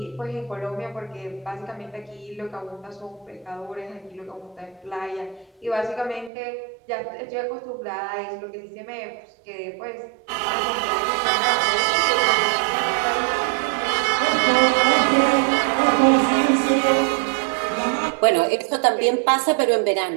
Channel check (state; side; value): drops out; left; at 6.3 s